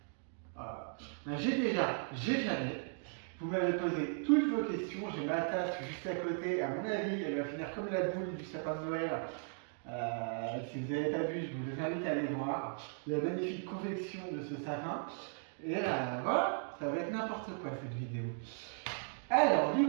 un j'ai déjà, j'ai jamais. Vous m'avez posé toutes vos questions, j'ai ma tasse juste à côté, à mon avis elle va finir comme la boule du sapin de Noël. Si vous n'avez pas vu, je vous invite à aller voir la magnifique confection de ce sapin. Et voilà, ça va être n'importe quoi cette vidéo. Alors du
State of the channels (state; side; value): silent; left; 53 dB below the other